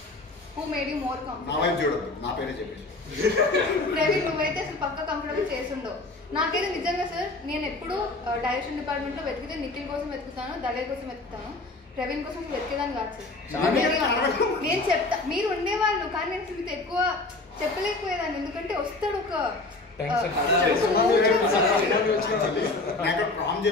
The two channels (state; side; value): quieter; right; 3.2 dB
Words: Who made you more comfortable? చూడదు, నా పేరే చెప్పేసి. ప్రవీణ్ నువ్వైతే అసలు పక్క కంఫర్టబుల్ చేసుండవు. నాకైతే నిజంగా సార్ నేను ఎప్పుడు డైరెక్షన్ డిపార్ట్మెంట్ లో వెతికితే నిఖిల్ కోసం వెతుకుతాను, దళేర్ కోసం వెతుకుతాను, ప్రవీణ్ కోసం వెతికేదాన్ని కాదు సార్. నేను చెప్తా మీరు ఉండేవాళ్ళు, కానీ నేను మీతో ఎక్కువ చెప్పలేకపోయేదాన్ని, ఎందుకంటే వస్తాడు ఒక ప్రామ్